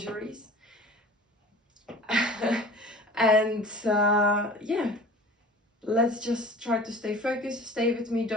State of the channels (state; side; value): normal; both; correlation 0.41